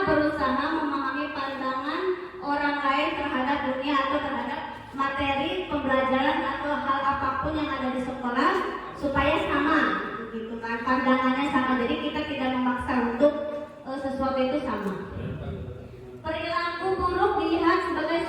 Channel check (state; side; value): identical; both; correlation 1.00